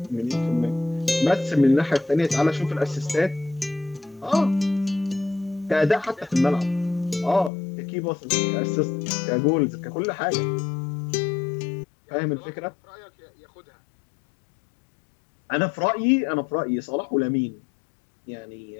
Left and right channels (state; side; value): drops out; right; at 7.5 s